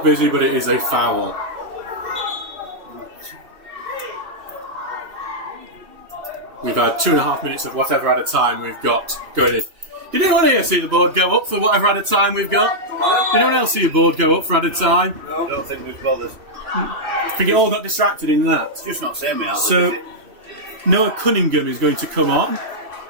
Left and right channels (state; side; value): late; left; 2.9 ms